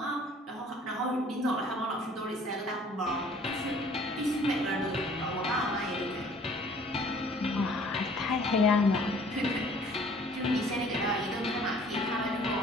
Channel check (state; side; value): normal; both; correlation 0.54